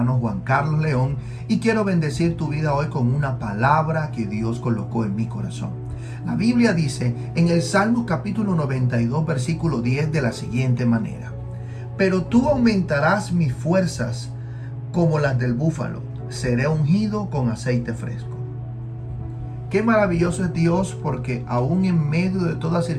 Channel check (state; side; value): identical; both; correlation 1.00